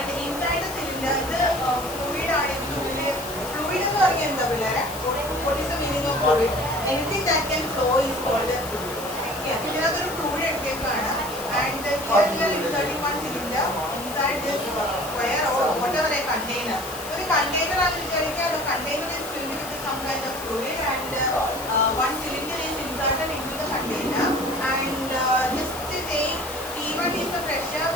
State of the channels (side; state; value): left; noise; hiss, 12 dB below the sound